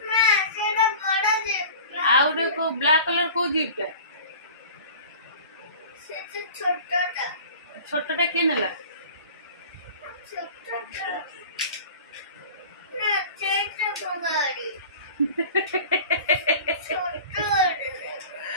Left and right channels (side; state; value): both; inverted; correlation -0.41